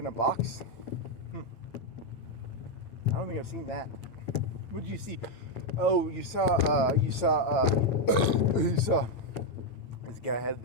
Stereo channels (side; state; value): right; late; 9.1 ms